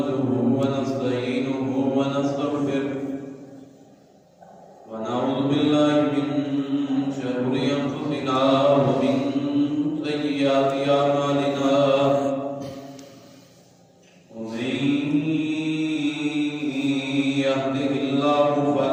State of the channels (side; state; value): both; identical; correlation 1.00